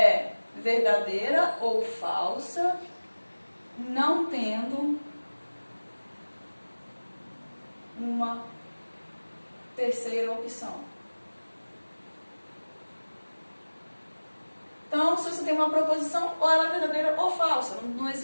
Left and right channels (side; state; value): both; inverted; correlation -1.00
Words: verdadeira ou falsa, não tendo uma terceira opção. Então, se você tem uma proposição, ou ela é verdadeira ou falsa. Não